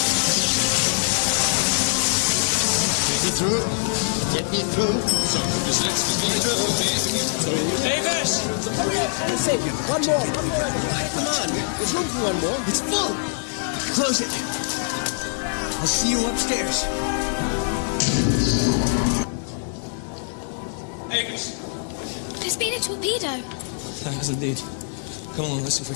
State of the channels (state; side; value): silent; right; digital silence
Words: Get me through. Get me through. So, just let's get through. Davis! Sapien, one more. Come on. There's room for one more. It's full. Close it. I'll see you upstairs. Davis! There's been a torpedo. There has indeed. Come along, let's see if I